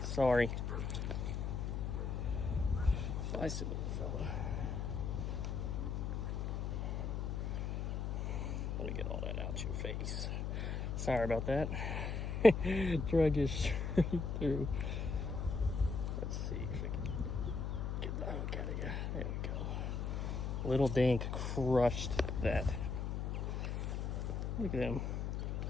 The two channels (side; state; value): left; noise; hum, 1 dB below the sound